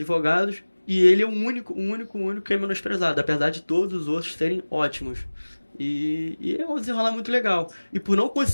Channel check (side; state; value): both; inverted; correlation -1.00